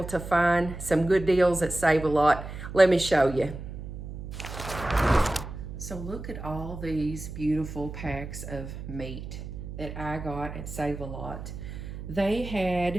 to find some good deals that save a lot. Let me show you. So look at all these beautiful packs of meat that I got at Save a Lot. They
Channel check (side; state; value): right; noise; hum, 9 dB below the sound